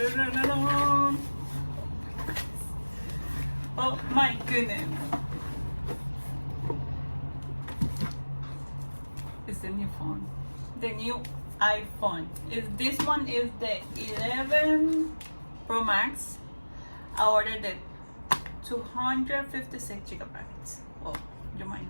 Oh my goodness. It's the new phone. The new iPhone. This one is the 11 Pro Max. I ordered it 256 gigabytes. Well, you might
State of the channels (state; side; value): inverted; both; correlation -1.00